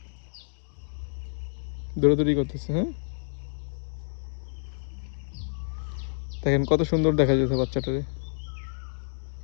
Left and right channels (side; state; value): right; silent; digital silence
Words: দৌড়াদৌড়ি করতেছে। হ্যাঁ দেখেন কত সুন্দর দেখা যাচ্ছে বাচ্চাটারে।